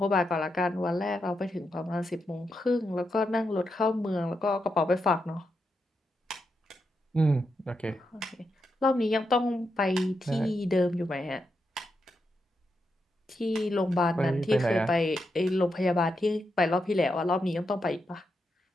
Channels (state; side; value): normal; both; correlation 0.84